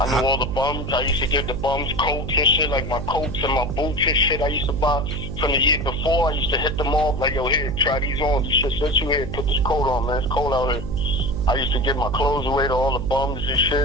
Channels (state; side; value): noise; right; hum, 4 dB below the sound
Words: knew all the bums. I used to give the bums coats and shit, like my coats and my boots and shit I used to buy from the year before. I used to hit them off, like, yo, here, try these on. You should sit you here, put this coat on, man. It's cold out here. I used to give my clothes away to all the bums and